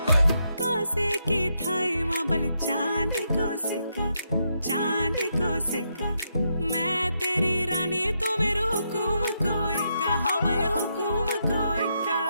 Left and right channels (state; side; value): inverted; both; correlation -0.80